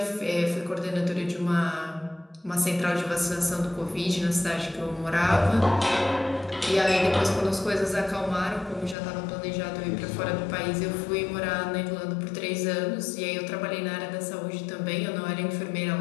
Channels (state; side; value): drops out; right; at 9.0 s